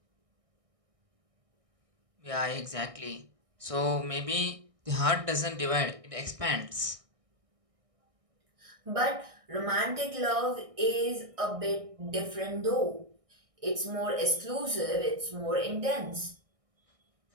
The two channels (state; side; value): late; left; 1.6 ms